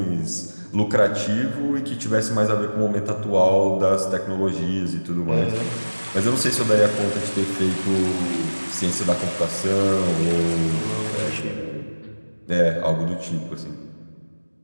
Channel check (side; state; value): both; inverted; correlation -1.00